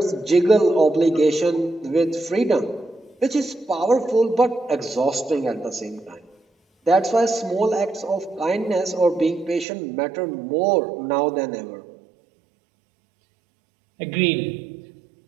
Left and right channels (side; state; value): left; drops out; at 9.7 s